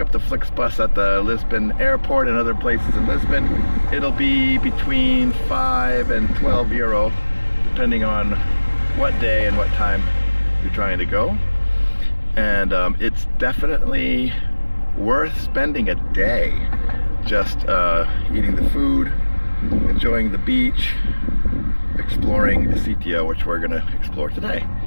up the Flix bus at the Lisbon airport and other places in Lisbon. It'll be between 5 and 12 euro, depending on what day and what time you're trying to go. And it's definitely worth spending a day just eating the food, enjoying the beach, exploring Sitio, which we're gonna explore today.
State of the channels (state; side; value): inverted; both; correlation -1.00